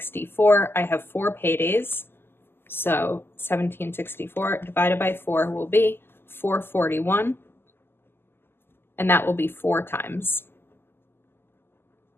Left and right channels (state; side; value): late; right; 0.11 ms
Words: I have 4 paydays. So $17.64 divided by 4 will be $441. And that will be 4 times.